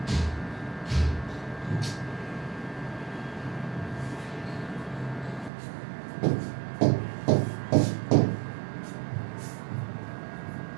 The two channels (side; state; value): left; drops out; at 5.5 s